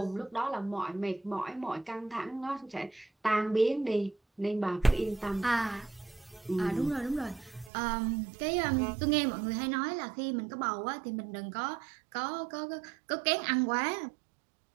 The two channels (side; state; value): left; drops out; at 7.7 s